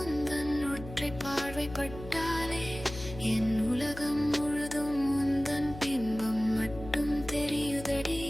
உந்தன் ஒற்றை பார்வைப்பட்டாலே என் உலகம் முழுதும் உந்தன் பிம்பம் மட்டும் தெரியுதடி.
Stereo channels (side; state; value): left; noise; hum, 13 dB below the sound